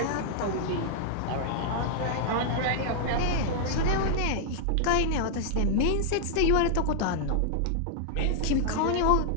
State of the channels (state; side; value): different; both; correlation -0.01